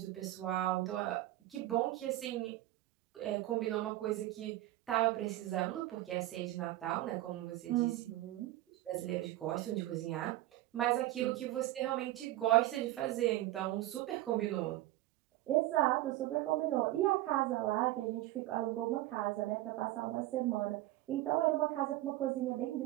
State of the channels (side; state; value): left; quieter; 16.1 dB